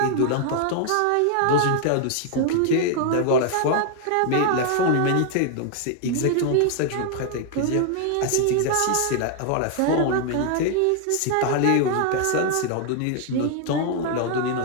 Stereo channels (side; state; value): both; different; correlation 0.00